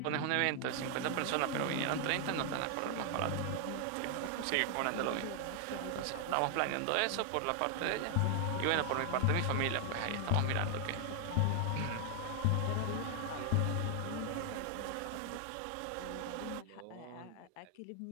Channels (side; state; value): both; different; correlation 0.00